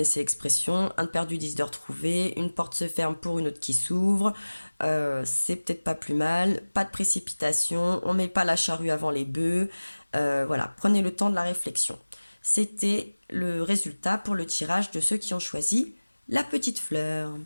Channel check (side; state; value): both; inverted; correlation -1.00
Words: l'expression, un de perdu, 10 de retrouvé, une porte se ferme pour une autre qui s'ouvre. C'est peut-être pas plus mal, pas de précipitation, on met pas la charrue avant les bœufs. Voilà, prenez le temps de la réflexion. C'était le résultat pour le tirage de ceux qui ont choisi la petite fleur.